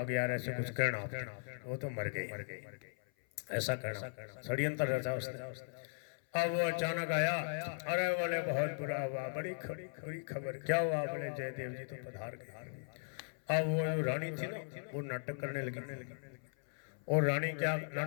गया, ऐसे कुछ कहना, वो तो मर गई, ऐसा करना षड्यंत्र रचा उसने। अब वो अचानक आया, अरे बोले बहुत बुरा हुआ, बड़ी खबर, क्या हुआ। बोले जयदेव जी तो पधार गए। अब वो रानी थी ना, वो नाटक करने लगी, और रानी क्या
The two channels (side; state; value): right; silent; 52 dB below the other